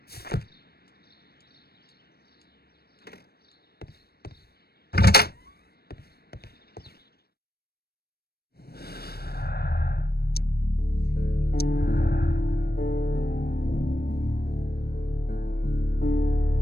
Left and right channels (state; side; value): late; right; 0.46 ms